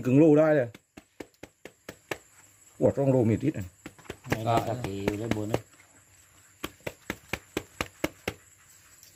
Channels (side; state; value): both; identical; correlation 1.00